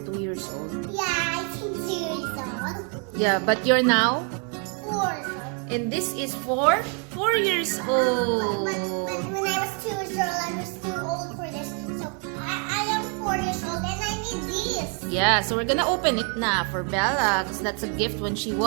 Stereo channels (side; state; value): left; quieter; 39.2 dB